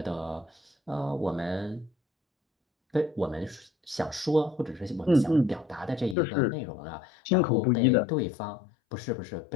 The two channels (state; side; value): drops out; right; at 6.2 s